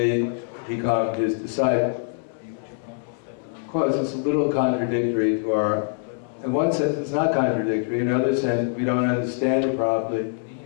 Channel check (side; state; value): right; silent; 63 dB below the other